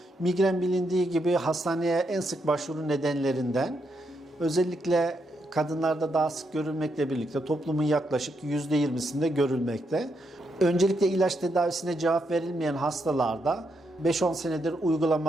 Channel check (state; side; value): normal; both; correlation 0.80